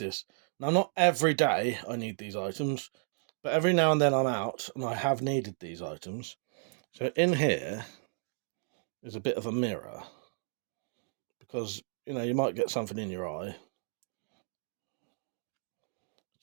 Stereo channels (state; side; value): silent; left; digital silence